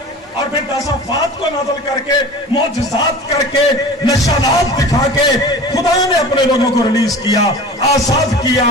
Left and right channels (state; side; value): normal; both; correlation 0.38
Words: اور پھر داسافات کو نازل کر کے معجزات کر کے نشانات دکھا کے خدا نے اپنے لوگوں کو ریلیز کیا, آزاد کیا